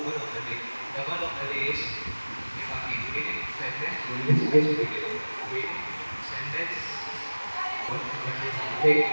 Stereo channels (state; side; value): inverted; both; correlation -1.00